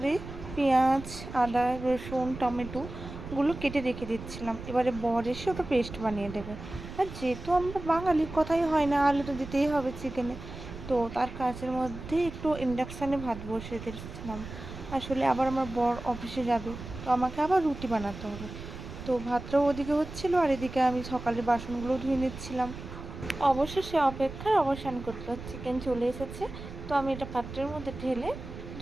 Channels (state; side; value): noise; right; rumble, 11 dB below the sound